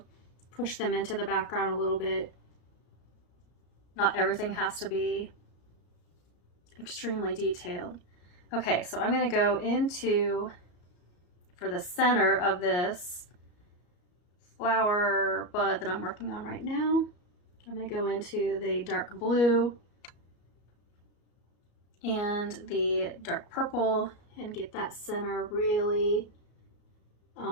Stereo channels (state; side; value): late; right; 34 ms